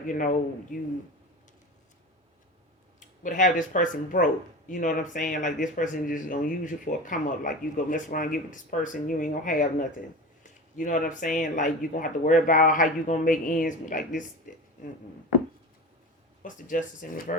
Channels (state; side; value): normal; both; correlation 0.30